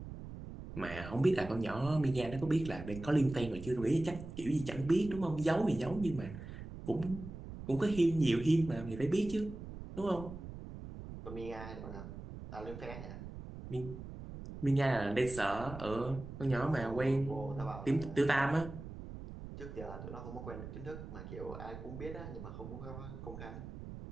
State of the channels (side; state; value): right; noise; rumble, 11 dB below the sound